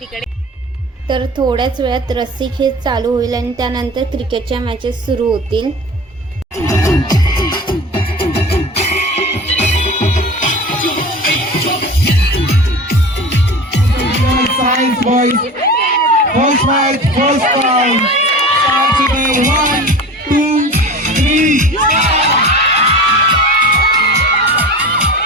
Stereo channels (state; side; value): normal; both; correlation 0.35